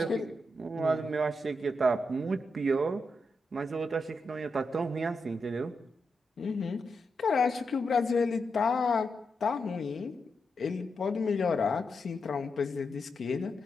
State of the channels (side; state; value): both; normal; correlation 0.85